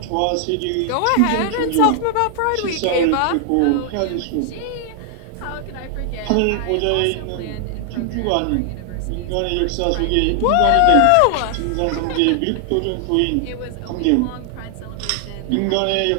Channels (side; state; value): both; different; correlation 0.00